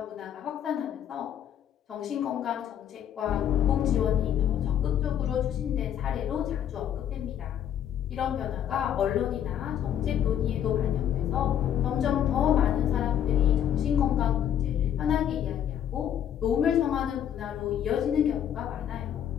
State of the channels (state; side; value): quieter; right; 9.8 dB